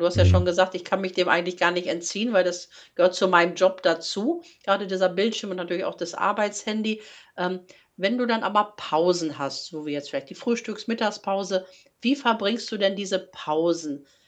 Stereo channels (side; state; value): both; identical; correlation 1.00